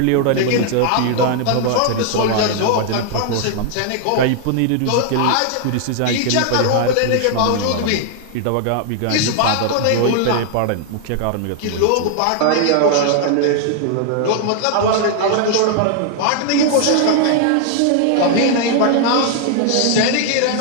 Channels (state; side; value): different; both; correlation 0.00